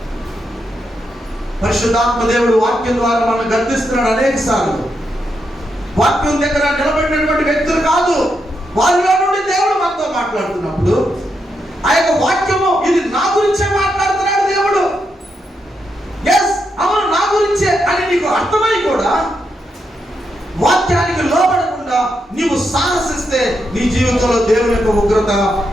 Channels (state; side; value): normal; both; correlation 0.82